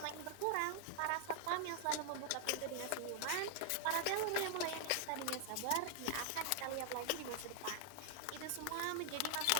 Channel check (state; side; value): different; both; correlation -0.01